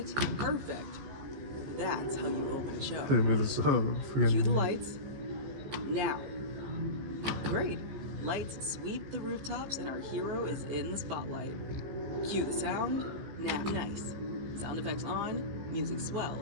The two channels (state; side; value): late; left; 15 ms